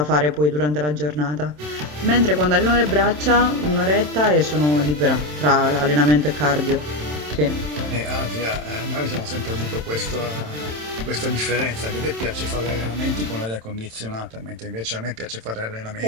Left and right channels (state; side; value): late; left; 27 ms